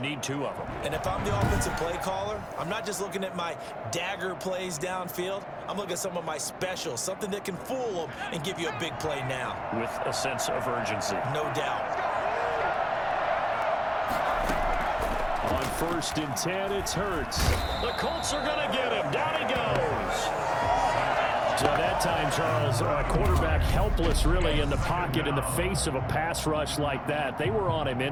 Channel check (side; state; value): both; identical; correlation 1.00